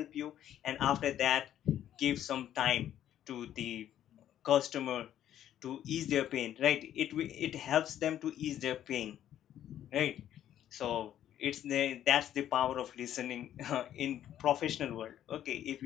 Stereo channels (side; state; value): right; quieter; 11.2 dB